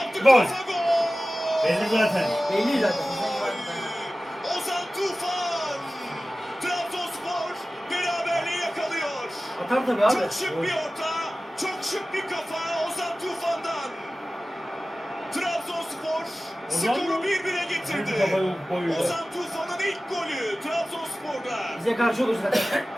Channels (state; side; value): normal; both; correlation 0.96